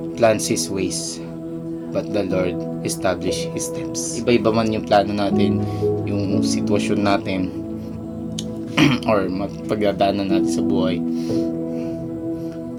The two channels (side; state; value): both; identical; correlation 1.00